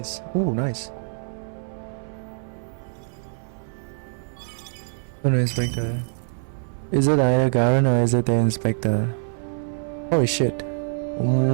Ooh, nice. Oh no, inspector. Is it either Garen or is it the inspector? Holy shit.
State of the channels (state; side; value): silent; left; 58 dB below the other